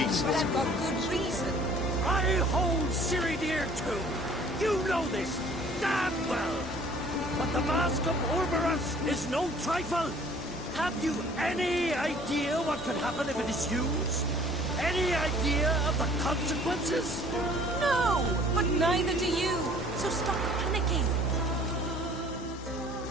I've got good reason. I hold Ciri dear too. You know this damn well. But the Mask of Orberus is no trifle. Have you any idea what could happen if it is used? Any idea of the consequences? No, but neither do you. So stop panicking.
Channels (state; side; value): normal; both; correlation 0.53